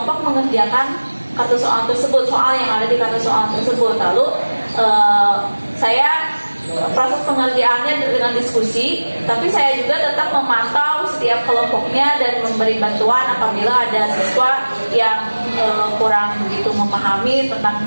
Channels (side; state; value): both; inverted; correlation -1.00